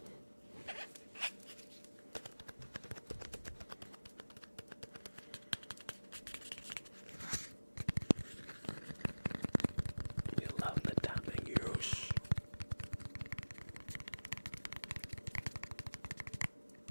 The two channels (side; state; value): both; inverted; correlation -1.00